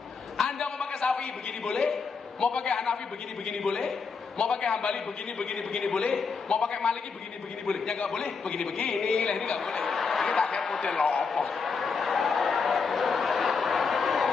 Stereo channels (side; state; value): right; quieter; 5.1 dB